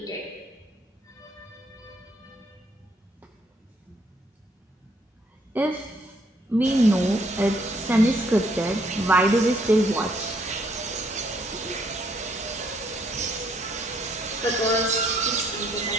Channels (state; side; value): normal; both; correlation 0.69